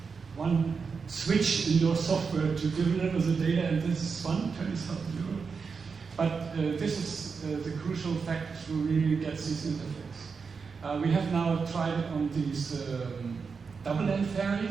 one switch in your software to deliver the data, and this is 20,000 euros. But this is the crucial fact to really get this interface. We have now tried it on these double-end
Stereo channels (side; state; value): left; quieter; 5.3 dB